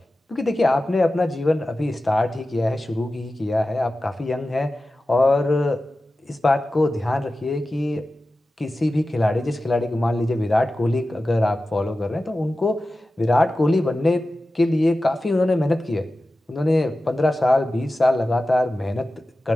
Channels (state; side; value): normal; both; correlation 0.94